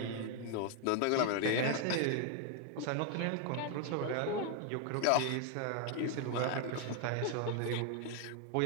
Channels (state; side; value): different; both; correlation 0.00